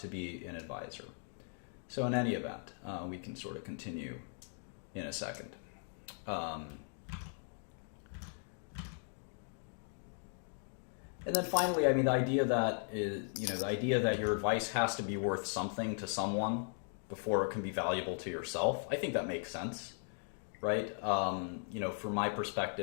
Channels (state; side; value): silent; right; 52 dB below the other